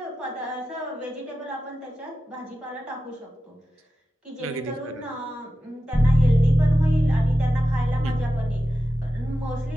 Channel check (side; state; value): both; normal; correlation 0.92